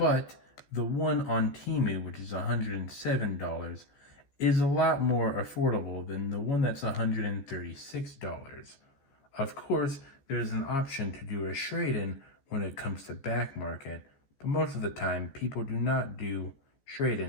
the one on Temu, which is $107, is a lot more affordable than the one that's $136. Of course, there's an option to do a trade-in when it comes to back market, but most of the time people do not do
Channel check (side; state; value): right; late; 14 ms